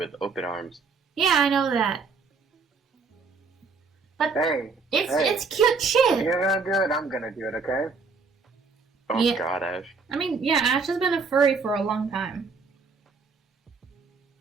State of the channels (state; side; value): quieter; left; 4.6 dB